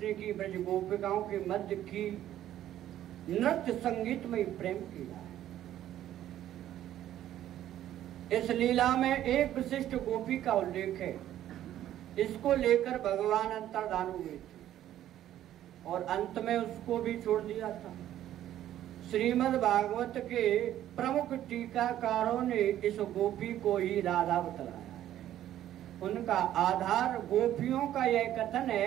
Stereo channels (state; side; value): quieter; left; 12.2 dB